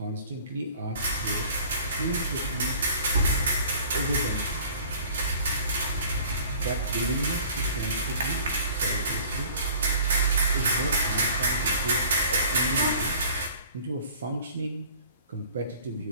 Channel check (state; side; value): inverted; both; correlation -0.49